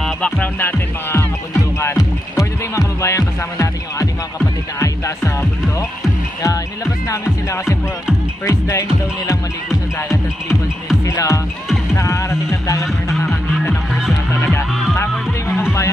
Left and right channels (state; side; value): normal; both; correlation 0.85